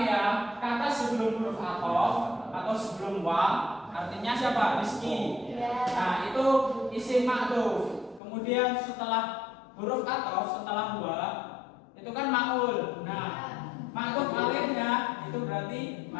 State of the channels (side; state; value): right; drops out; at 8.2 s